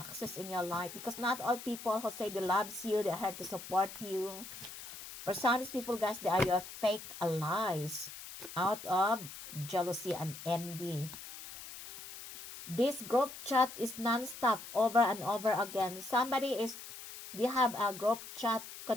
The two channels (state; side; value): noise; left; hiss, 12 dB below the sound